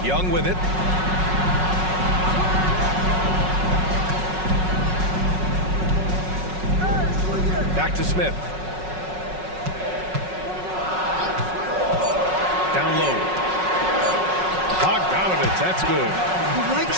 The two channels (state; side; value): late; left; 5.4 ms